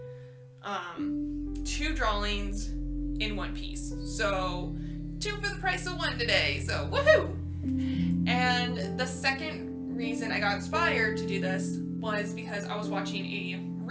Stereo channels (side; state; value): both; identical; correlation 1.00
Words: two drawings in one piece. So two for the price of one today, so woohoo! And the second reason I got inspired to do this was because I was watching a